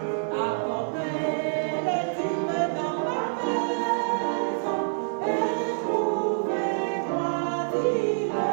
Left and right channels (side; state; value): left; silent; digital silence